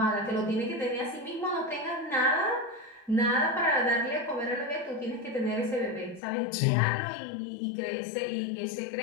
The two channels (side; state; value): right; drops out; at 6.2 s